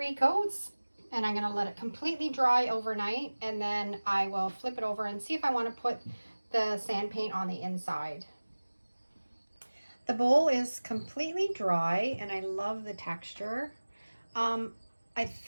coats, and I'm going to let it completely dry overnight, and then I will flip it over and see if I want to put the sand paint on the inside. The bowl is completely dry and I love the texture. I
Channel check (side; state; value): both; inverted; correlation -1.00